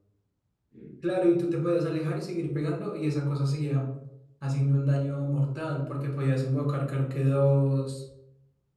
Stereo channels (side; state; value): both; identical; correlation 1.00